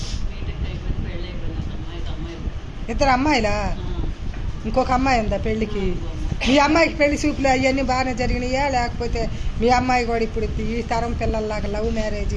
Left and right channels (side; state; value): both; identical; correlation 1.00